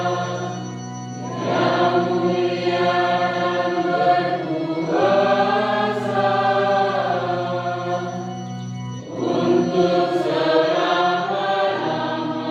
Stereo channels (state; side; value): identical; both; correlation 1.00